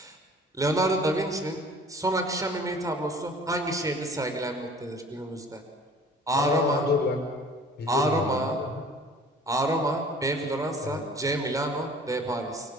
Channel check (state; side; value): normal; both; correlation 0.49